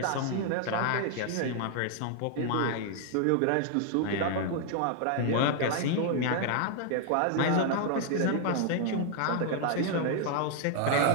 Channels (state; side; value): different; both; correlation 0.00